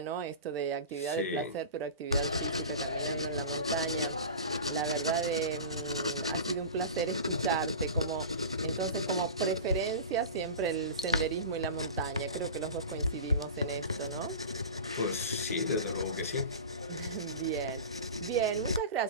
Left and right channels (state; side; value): inverted; both; correlation -0.32